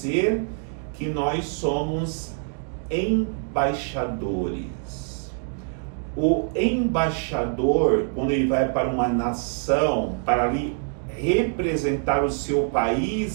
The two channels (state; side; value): silent; left; 57 dB below the other